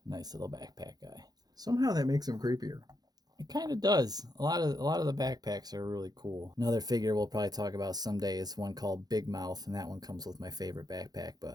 a nice little backpack guy. Somehow that makes him creepier. It kind of does. A lot of the backpacks are really cool. Another figure we'll probably talk about someday is one called Big Mouth, and that one comes with my favorite backpack. But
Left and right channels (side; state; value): left; late; 0.19 ms